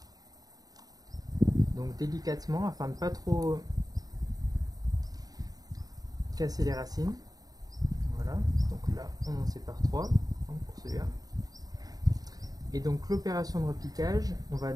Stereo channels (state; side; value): late; left; 0.18 ms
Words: donc délicatement afin de ne pas trop casser les racines. Voilà, donc là on en sépare 3 pour celui-là. Et donc l'opération de repiquage, on va